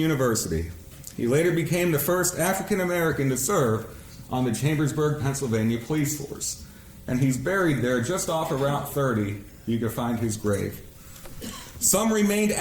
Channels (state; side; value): identical; both; correlation 1.00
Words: He later became the first African American to serve on the Chambersburg, Pennsylvania police force. And he's buried there just off of Route 30. You can find his grave. Some remained